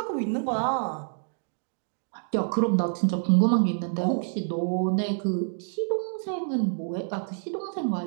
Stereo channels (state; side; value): silent; left; digital silence